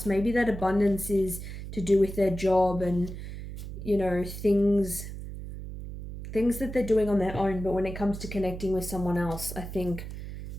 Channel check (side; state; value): right; noise; hum, 9 dB below the sound